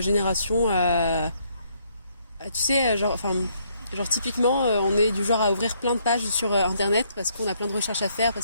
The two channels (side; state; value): both; inverted; correlation -0.70